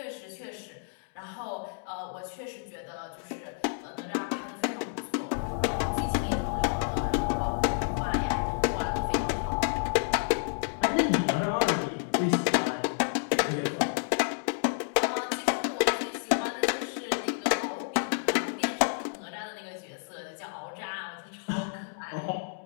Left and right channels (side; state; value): right; silent; digital silence